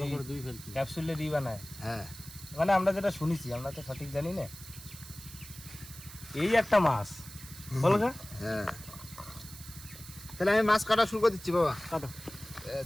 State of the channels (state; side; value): noise; right; hiss, 15 dB below the sound